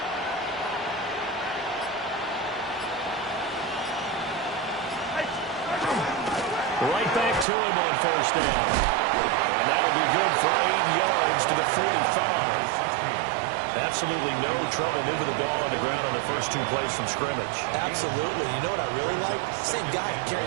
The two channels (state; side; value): drops out; left; at 7.5 s